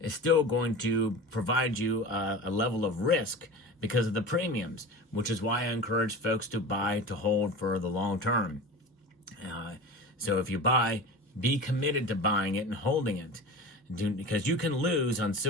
still going to provide you a level of risk because of the premiums, which is why I encourage folks to buy to hold for the long term. So if you buy, be committed to buying it and holding it, because you can lose on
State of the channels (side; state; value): both; normal; correlation 0.33